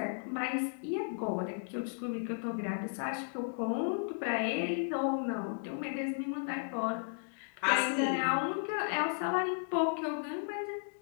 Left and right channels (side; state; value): right; silent; digital silence